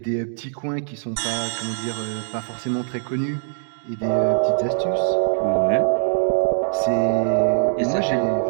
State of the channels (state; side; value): silent; left; digital silence